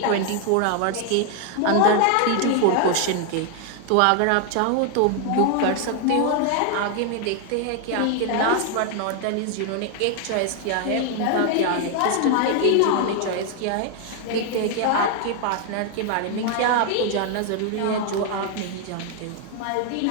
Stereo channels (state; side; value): different; both; correlation 0.00